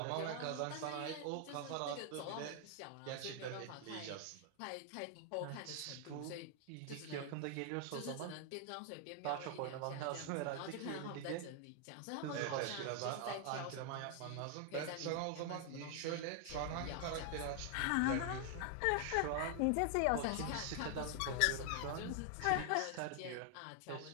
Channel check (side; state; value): both; different; correlation 0.00